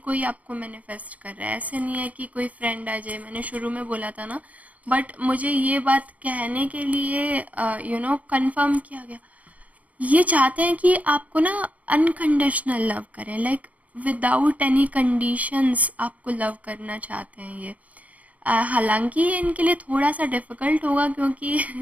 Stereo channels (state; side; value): late; left; 0.071 ms